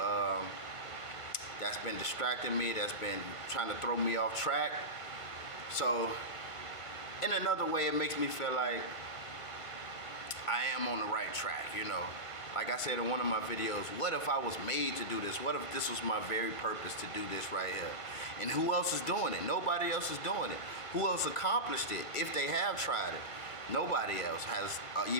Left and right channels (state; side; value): late; right; 1.5 ms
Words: that's been distracting me, that's been trying to throw me off track. So in another way, it makes me feel like I am on the right track, Like I said in one of my videos, what if I was made to do this? What if this was my very purpose to do this right here? And who else is doing it? Nobody else is doing it. Who else accomplished it if they have tried it? Nobody else has